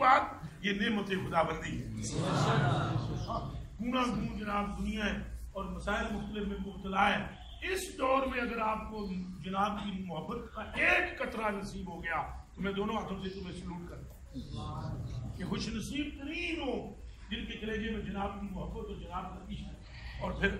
یہ نعمت خدا بندی ہے. گونا گون جناب دنیا ہے اور مسائل مختلف میں مبتلا ہے. اس دور میں اگر آپ کو جناب کی محبت کا ایک قطرہ نصیب ہو گیا تو میں دونوں ہاتھوں سے تمہیں سلوٹ کرتا ہوں کہ خوش نصیب ترین ہو جن کے کلیجے میں جناب کی محبت اور جناب کا عشق اور پھر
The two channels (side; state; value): both; identical; correlation 1.00